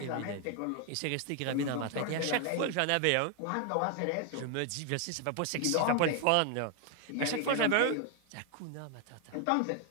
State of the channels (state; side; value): different; both; correlation 0.01